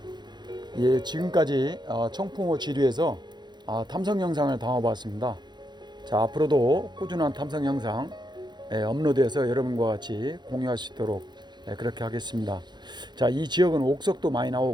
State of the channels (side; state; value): left; late; 0.21 ms